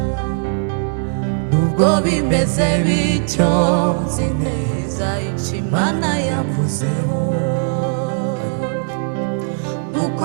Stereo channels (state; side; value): silent; left; digital silence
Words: Nubwo bimeze bityo, nzi neza icyo Imana yavuzeho, nuko